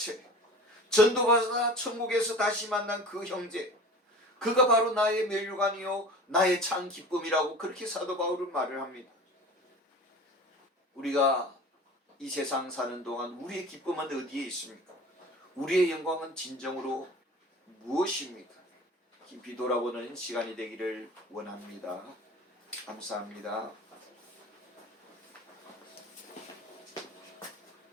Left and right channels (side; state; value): both; normal; correlation 0.39